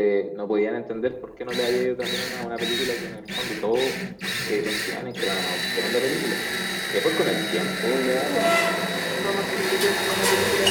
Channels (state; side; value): identical; both; correlation 1.00